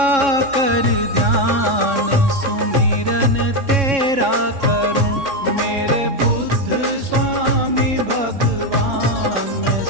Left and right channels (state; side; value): late; left; 3.6 ms